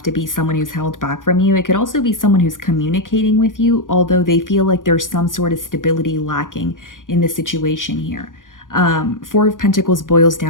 to be someone who's held back from you. It could also be someone who's communicating with you, although they feel like there's some sort of stability lacking in the situation here. Four of Pentacles boils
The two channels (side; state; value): right; late; 0.88 ms